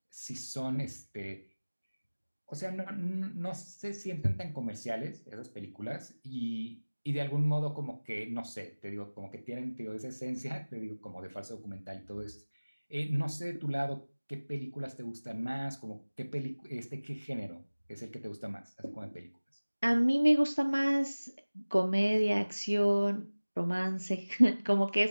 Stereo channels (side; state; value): both; inverted; correlation -1.00